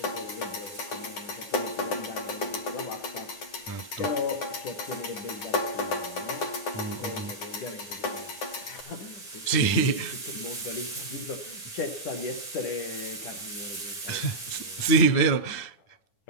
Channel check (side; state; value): right; late; 9.7 ms